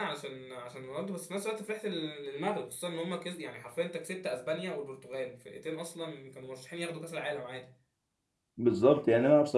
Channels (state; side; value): identical; both; correlation 1.00